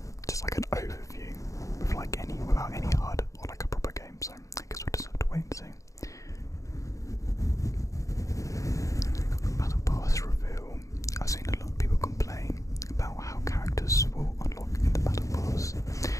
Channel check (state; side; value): late; right; 0.16 ms